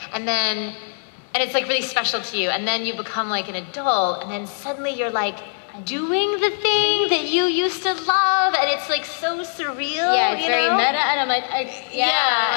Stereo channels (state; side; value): silent; right; 64 dB below the other